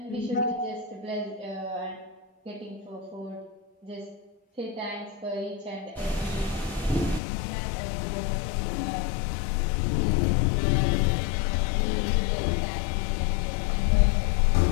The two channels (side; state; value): right; drops out; at 7.2 s